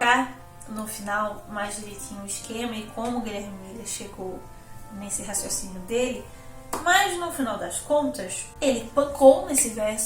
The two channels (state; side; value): identical; both; correlation 1.00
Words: no final, mais direitinho o esquema e como o Guilherme Miller chegou nesse raciocínio dele, mas no final das contas, ele pancou nesse